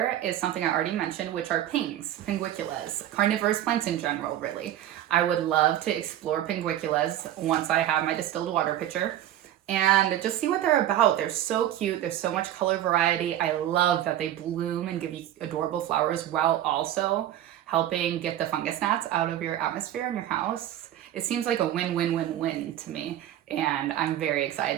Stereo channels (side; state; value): left; quieter; 12.2 dB